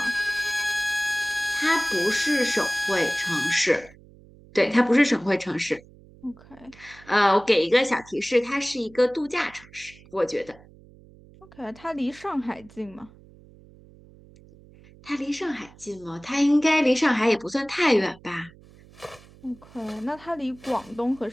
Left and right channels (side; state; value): right; noise; hum, 24 dB below the sound